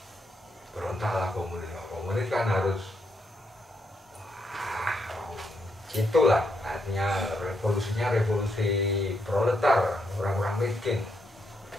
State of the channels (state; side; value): normal; both; correlation 0.79